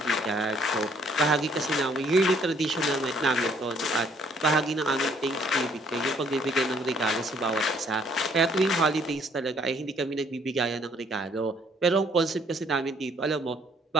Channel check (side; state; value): both; normal; correlation 0.63